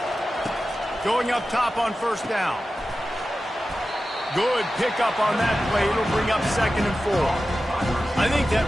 Going up top on 1st down. Good pickup on that play. It'll bring up 2nd and 4. I think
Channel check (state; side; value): normal; both; correlation 0.93